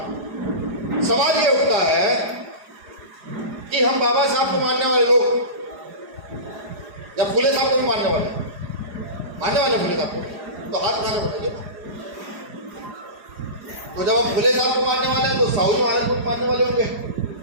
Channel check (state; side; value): late; left; 4.8 ms